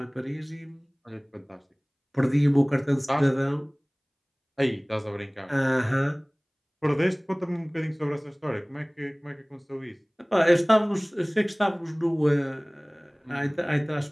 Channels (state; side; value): identical; both; correlation 1.00